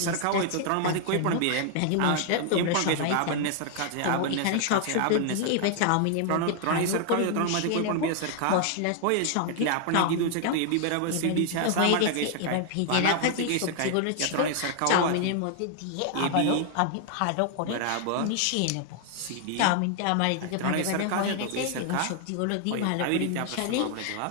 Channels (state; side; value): different; both; correlation 0.00